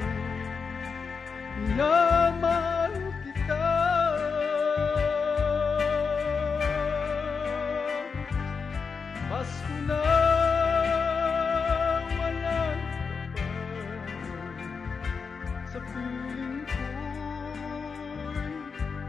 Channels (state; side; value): quieter; right; 5.4 dB